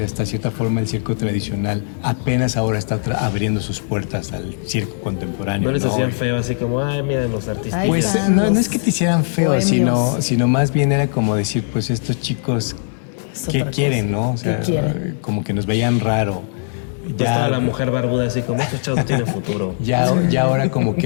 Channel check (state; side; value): silent; right; digital silence